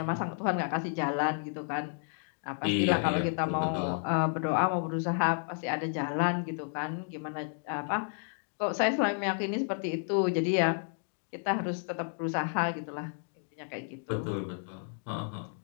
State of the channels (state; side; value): silent; right; 57 dB below the other